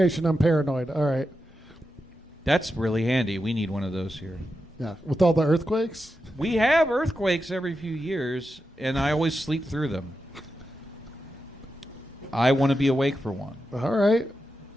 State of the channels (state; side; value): normal; both; correlation 0.89